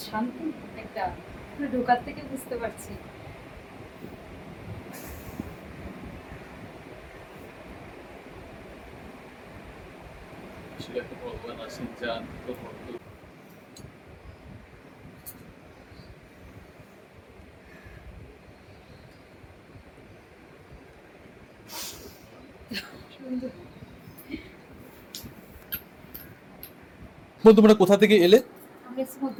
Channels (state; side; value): identical; both; correlation 1.00